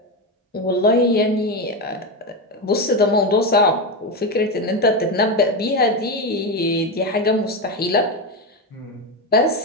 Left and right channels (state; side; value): normal; both; correlation 0.13